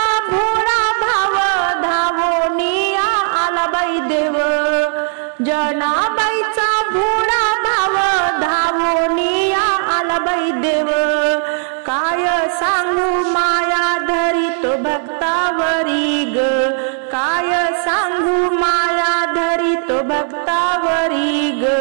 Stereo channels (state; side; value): silent; left; 58 dB below the other